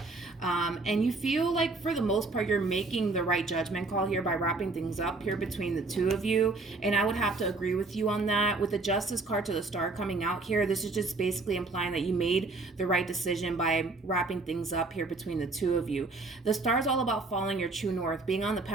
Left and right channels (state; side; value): quieter; left; 3.5 dB